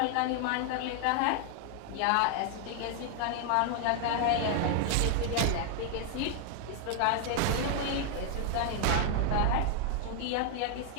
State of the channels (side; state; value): both; different; correlation 0.00